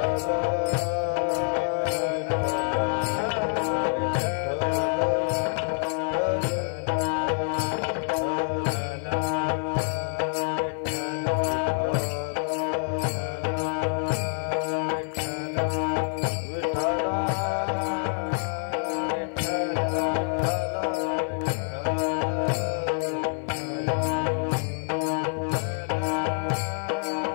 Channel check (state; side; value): silent; right; 56 dB below the other